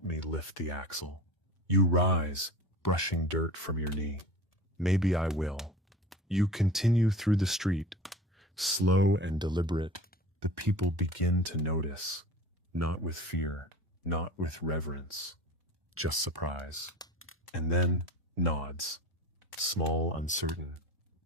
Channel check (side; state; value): both; normal; correlation 0.37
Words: me lift the axle. You rise, brushing dirt from your knee. Maybe I will. You continue through the street, slow and deliberate. The people begin to notice, not with fear, not with reverence, just surprise. And then nods, small, uncertain,